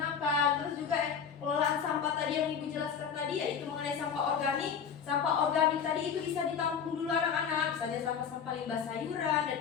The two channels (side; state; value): right; quieter; 7.1 dB